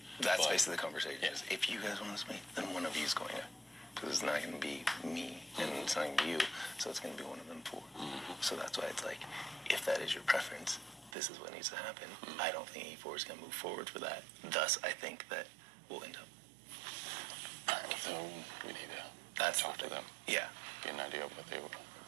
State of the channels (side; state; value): left; drops out; at 11.2 s